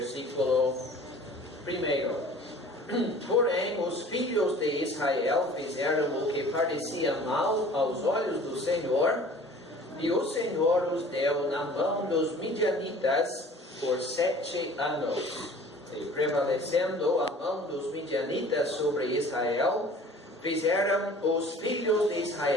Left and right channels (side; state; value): both; normal; correlation 0.47